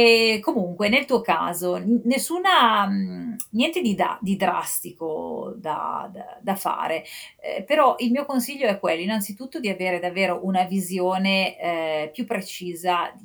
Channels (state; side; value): identical; both; correlation 1.00